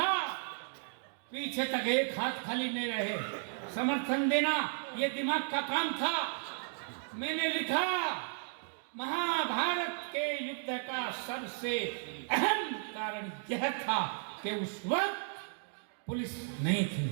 पीछे तक एक हाथ खाली नहीं रहे, समर्थन देना ये दिमाग का काम था। मैंने लिखा, महाभारत के युद्ध का सबसे अहम कारण यह था कि उस वक्त पुलिस नहीं थी।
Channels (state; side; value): silent; left; digital silence